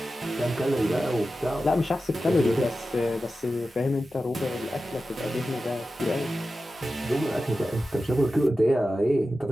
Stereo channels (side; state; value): both; normal; correlation 0.93